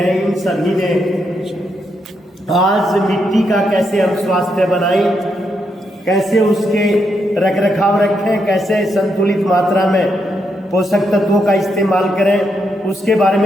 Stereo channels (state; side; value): normal; both; correlation 0.80